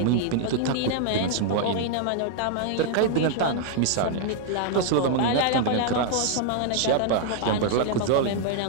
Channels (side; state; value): both; different; correlation -0.01